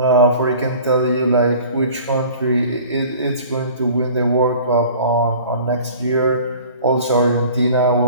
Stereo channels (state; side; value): inverted; both; correlation -0.46